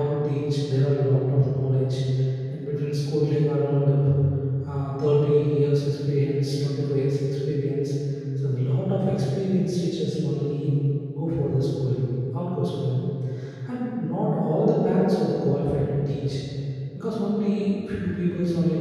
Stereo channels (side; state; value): both; identical; correlation 1.00